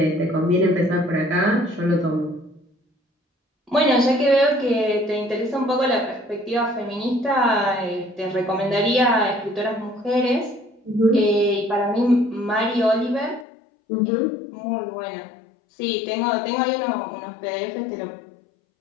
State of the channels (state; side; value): drops out; right; at 13.5 s